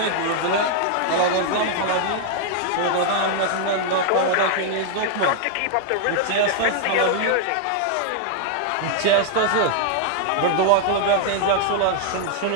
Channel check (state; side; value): different; both; correlation 0.00